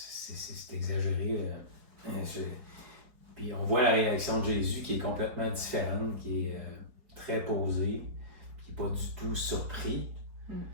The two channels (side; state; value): left; late; 4.8 ms